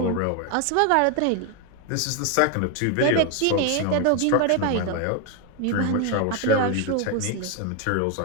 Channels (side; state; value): both; different; correlation 0.01